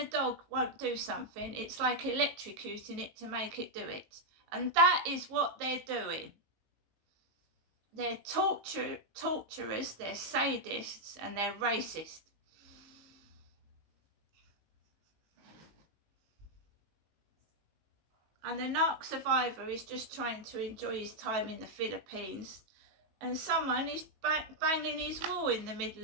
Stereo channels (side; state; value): left; late; 19 ms